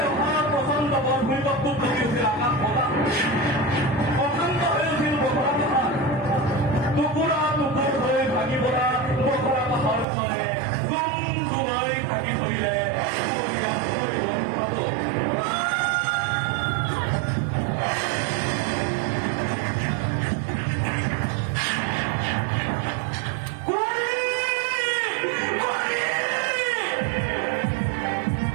অহা প্ৰচণ্ড বৰ ভূমিকম্পত কমি উঠিল আকাশ বতাহ অশান্ত হৈ উঠিল বখৰা পাহাৰ টুকুৰা টুকুৰ হৈ ভাগি পৰা বখৰা পাহাৰখনে গুম গুমাই থাকি ধৰিলে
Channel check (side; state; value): left; drops out; at 10.1 s